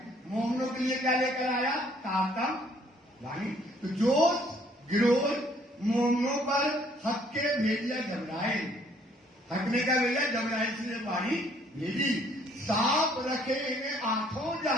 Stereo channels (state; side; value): normal; both; correlation 0.62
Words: मोहनों के लिए क्या लेकर आया? तारतम वाणी। तो जोश गिरोह मोहनों पर हक के भेजिया घबराए। हकने का भेजा घबराई से वाणी भेजी। सांप रखे इन्हें आंखों